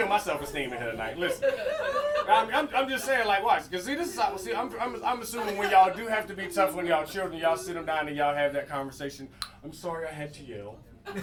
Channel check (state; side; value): identical; both; correlation 1.00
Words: my self-esteem in here tonight. Listen. I'm just saying, like, watch. Because, see, this is how, see, I'm assuming when y'all do have to be tough when y'all children, y'all sit them down and y'all have that conversation. I'm sorry I had to yell.